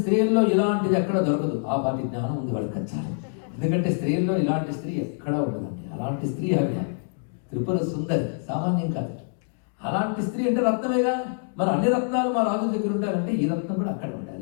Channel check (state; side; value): silent; right; 61 dB below the other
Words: స్త్రీల్లో ఇలాంటిది ఎక్కడ దొరకదు. ఆ పాటి జ్ఞానం ఉంది వాళ్ళకి వచ్చారు. ఎందుకంటే స్త్రీల్లో ఇలాంటి స్త్రీ ఎక్కడా ఉండదండి. అలాంటి స్త్రీ ఆవిడ త్రిపుర సుందరి, సామాన్యం కాదు. అలాంటి స్త్రీ అంటే రత్నమేగా. మరి అన్ని రత్నాలు మా రాజు దగ్గర ఉండాలంటే ఈ రత్నం కూడా అక్కడ